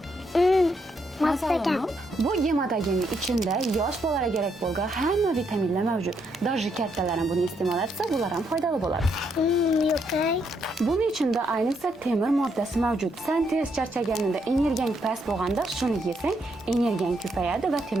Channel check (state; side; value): normal; both; correlation 0.76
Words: Masagan. Bu gematogenning ichida yosh bolalarga kerak bo'lgan hamma vitaminlar mavjud. Даже kattalar ham buni iste'mol etsa, bular ham foydali bo'ladi. Yo'q. Buning ichida ayniqsa temir moddasi mavjud. Sen tez charchaganingda, energiyang past bo'lganda shuni yesang, energiyang ko'payadi va